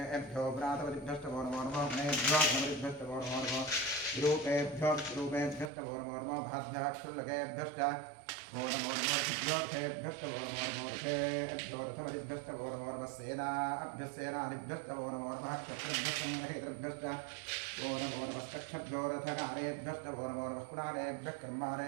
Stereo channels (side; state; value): left; drops out; at 5.7 s